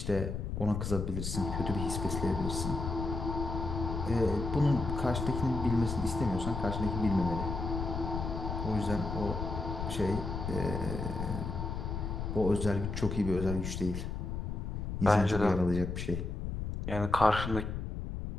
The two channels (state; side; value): noise; left; rumble, 4 dB below the sound